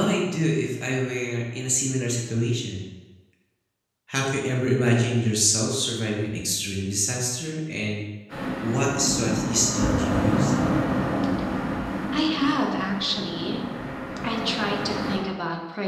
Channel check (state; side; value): identical; both; correlation 1.00